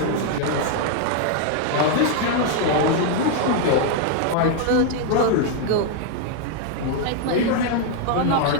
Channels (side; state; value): both; different; correlation 0.00